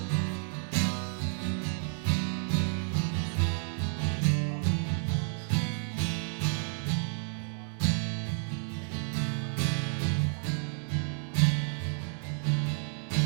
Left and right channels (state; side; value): silent; left; 57 dB below the other